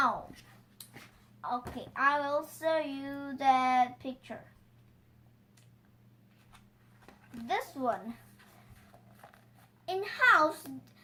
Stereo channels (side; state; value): both; identical; correlation 1.00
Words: Okay, I will show you that picture. This one. In house,